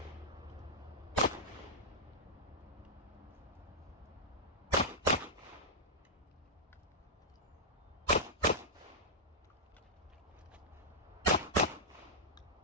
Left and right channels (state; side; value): normal; both; correlation -0.09